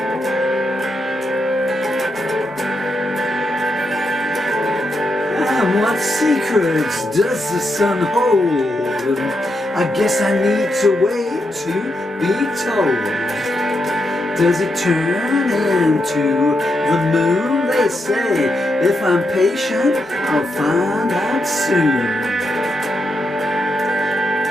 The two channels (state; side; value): normal; both; correlation 0.83